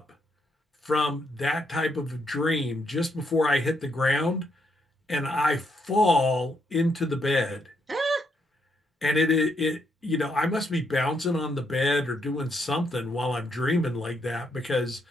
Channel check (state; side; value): normal; both; correlation 0.76